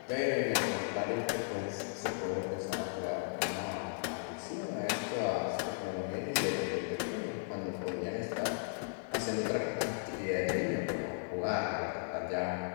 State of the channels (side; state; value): right; silent; digital silence